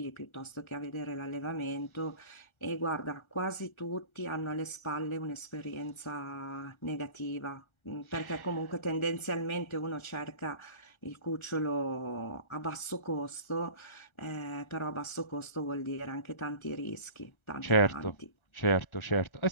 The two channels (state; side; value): late; right; 1.4 ms